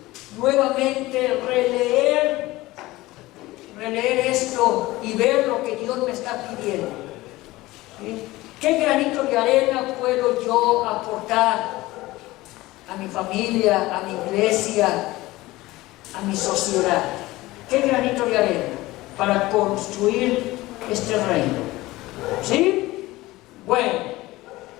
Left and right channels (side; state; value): right; quieter; 18.9 dB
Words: nuevamente releer esto y ver lo que Dios me está pidiendo. ¿Sí? ¿Qué granito de arena puedo yo aportar a mi familia, a mi iglesia, a mi sociedad? ¿Qué granito de arena para construir este reino? ¿Sí? Bueno,